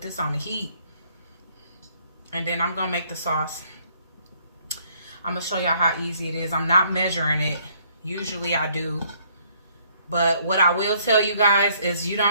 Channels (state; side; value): inverted; both; correlation -0.65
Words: this on the heat. And then I'm going to make the sauce. I'm going to show y'all how easy it is. I'm not measuring it. Usually I do. But what I will tell you guys is you